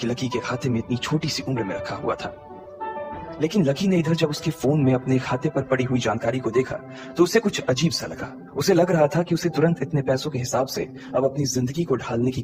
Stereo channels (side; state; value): both; identical; correlation 1.00